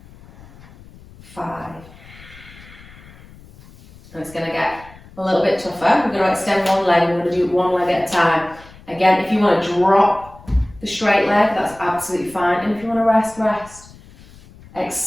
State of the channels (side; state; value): left; noise; rumble, 22 dB below the sound